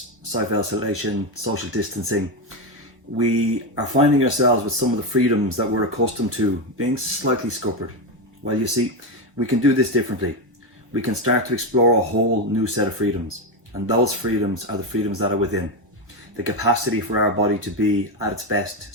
self-isolation, social distancing, we are finding ourselves with some of the freedoms that we're accustomed to being slightly scuppered. Well, you see, we can do this differently. We can start to explore a whole new set of freedoms, and those freedoms are the freedoms that are within. The capacity for our body to be at its best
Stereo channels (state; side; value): normal; both; correlation 0.11